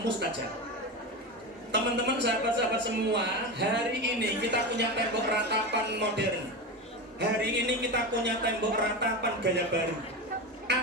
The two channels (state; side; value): normal; both; correlation 0.21